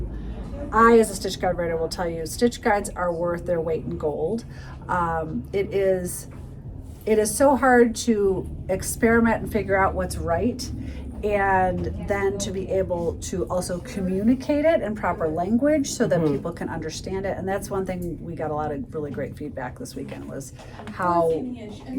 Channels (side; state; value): both; identical; correlation 1.00